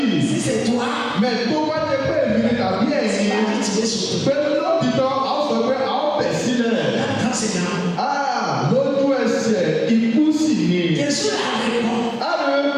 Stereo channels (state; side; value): identical; both; correlation 1.00